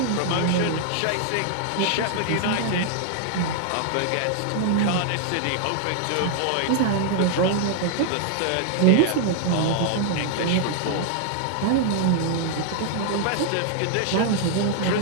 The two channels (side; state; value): both; different; correlation 0.00